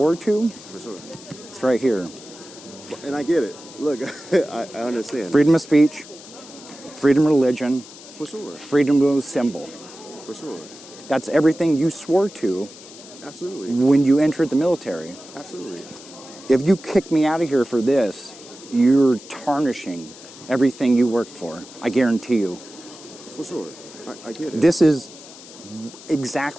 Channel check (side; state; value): left; noise; hiss, 18 dB below the sound